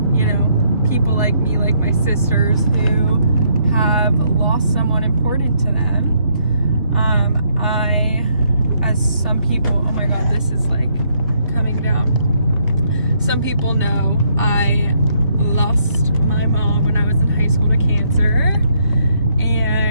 you know, people like me, like my sisters who have lost someone important to them. As some people, oh my god, this is like coming down. Some people know I lost my mom when I was in high school to cancer,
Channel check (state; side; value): inverted; both; correlation -0.72